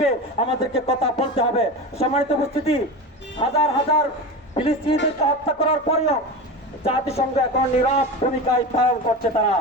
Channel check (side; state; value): both; normal; correlation 0.26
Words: আমাদেরকে কথা বলতে হবে। সম্মানিত উপস্থিতি, হাজার হাজার ফিলিস্তিনিদেরকে হত্যা করার পরেও জাতিসংঘ এখন নীরব ভূমিকায় পালন করছে তারা।